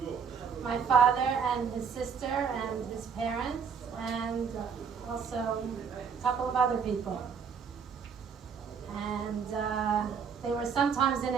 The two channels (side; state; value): left; quieter; 6.5 dB